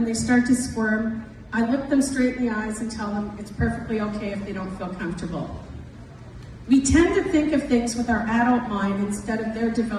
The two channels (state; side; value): identical; both; correlation 1.00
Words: they start to squirm, I look them straight in the eyes and tell them it's perfectly okay if they don't feel comfortable. We tend to think of things with our adult mind instead of their